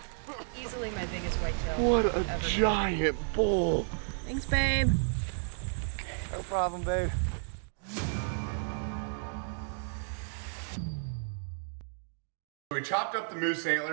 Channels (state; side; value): silent; left; digital silence